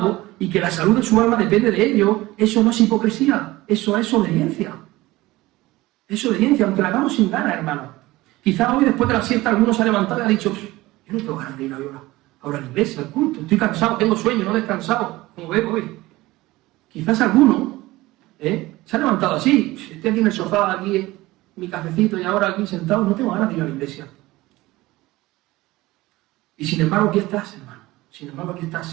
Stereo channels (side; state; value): left; quieter; 18.9 dB